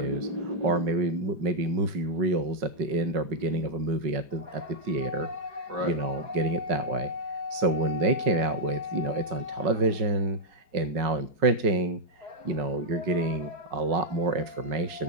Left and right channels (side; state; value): left; late; 5.3 ms